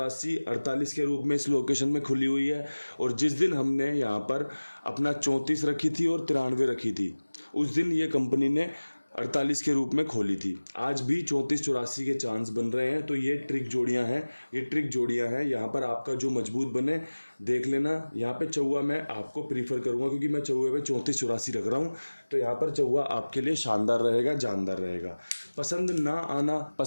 48 के रूप में इस लोकेशन में खुली हुई है, और जिस दिन हमने यहाँ पर अपना 34 रखी थी और 93 रखी थी, उस दिन ये कंपनी ने 48 के रूप में खोली थी। आज भी 34-84 के चांस बन रहे हैं। तो ये ट्रिक जोड़ियां हैं, ये ट्रिक जोड़ियां हैं। यहाँ पर आपका जो मजबूत बने देख लेना। यहाँ पे चौवा मैं आपको प्रीफर करूँगा, क्योंकि मैं चौवे पे 34-84 रख रहा हूँ। तो यहाँ पर चौवा आपके लिए शानदार रहेगा, जानदार रहेगा। पसंद ना आना,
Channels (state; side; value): inverted; both; correlation -1.00